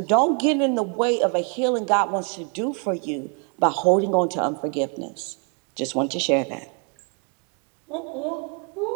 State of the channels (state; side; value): quieter; left; 37.8 dB